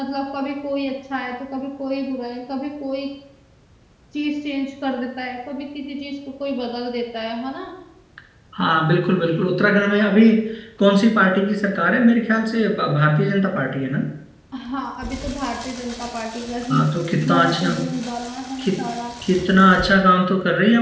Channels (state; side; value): identical; both; correlation 1.00